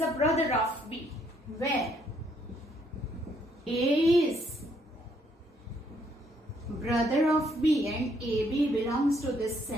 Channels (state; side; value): normal; both; correlation 0.69